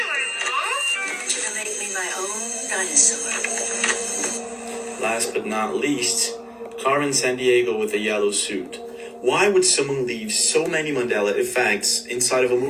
Last but not least, Carmen Sandiego with a yellow suit. Why would someone leave so many Mandela effects inside of a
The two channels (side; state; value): both; identical; correlation 1.00